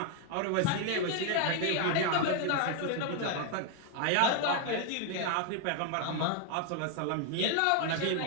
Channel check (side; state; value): both; different; correlation 0.00